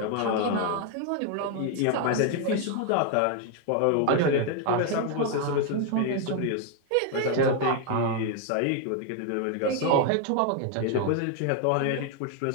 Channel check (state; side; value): different; both; correlation 0.01